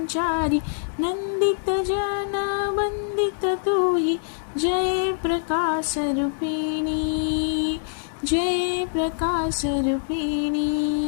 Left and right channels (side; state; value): right; silent; digital silence